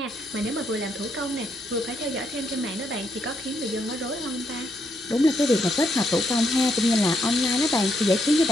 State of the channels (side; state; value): both; normal; correlation 0.77